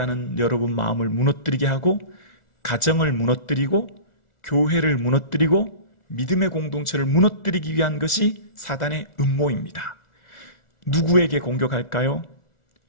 여러분 마음을 무너뜨리게 하고, 가정을 무너뜨리고, 교회를 무너뜨리고, 믿음의 공동체를 무너뜨리기 위한 것이 사단의 음모입니다. 누구에게 공격할까요?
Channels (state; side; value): late; right; 2.0 ms